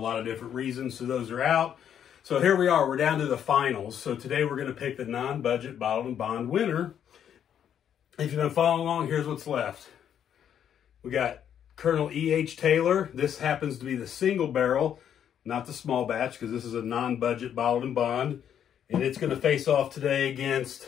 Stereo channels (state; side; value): quieter; right; 9.2 dB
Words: of different reasons. So those are out. So here we are. We're down to the finals. So today we're going to pick the non-budget bottled and bond winner. If you've been following along, here's what's left. We got Colonel E.H. Taylor. This happens to be the single barrel, not the small batch, because this is a non-budget bottled and bond. And it's going to face off today